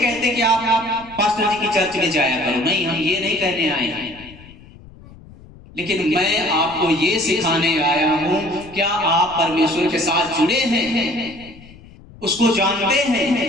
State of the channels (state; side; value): noise; left; rumble, 21 dB below the sound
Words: कि आप पास्टर जी की चर्च में जाया करो, नहीं, हम ये नहीं कहने आए हैं, लेकिन मैं आपको ये सिखाने आया हूं, क्या आप परमेश्वर के साथ जुड़े हैं? उसको जानते